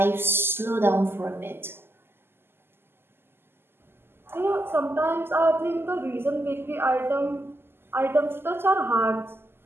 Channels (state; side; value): late; left; 0.11 ms